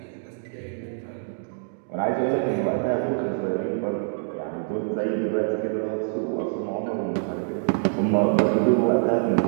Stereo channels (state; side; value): silent; left; digital silence